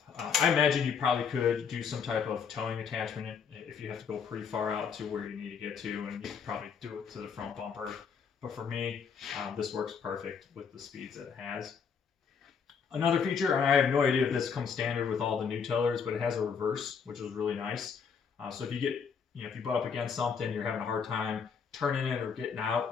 I imagine you probably could do some type of towing attachment if you have to go pretty far out to where you need to get to, and you could probably do it to the front bumper. But for me, this works perfect with the speeds that it has. Another feature, and I have no idea if this comes standard with all the new tillers, but it has a reverse, which is really nice. So if you get, if you butt up against something, you're having a hard time turning it or getting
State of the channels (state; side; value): quieter; right; 6.4 dB